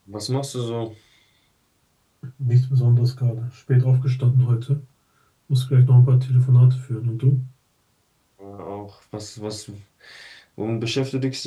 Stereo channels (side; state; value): both; identical; correlation 1.00